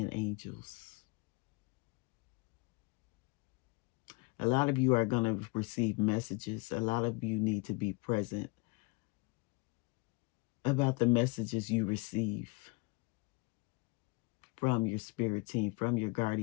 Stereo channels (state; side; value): quieter; right; 26.9 dB